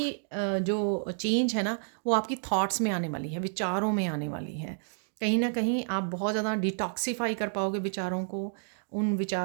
जो चेंज है ना वो आपकी थॉट्स में आने वाली है, विचारों में आने वाली है। कहीं न कहीं आप बहुत ज़्यादा डिटॉक्सिफ़ाई कर पाओगे विचारों को, उन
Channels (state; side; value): silent; left; digital silence